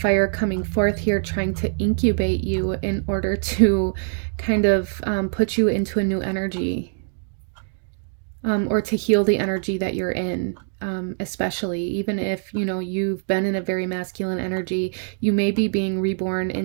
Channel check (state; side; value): silent; left; digital silence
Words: coming forth here, trying to incubate you in order to kind of put you into a new energy, or to heal the energy that you're in. Especially even if, you know, you've been in a very masculine energy, you may be being reborn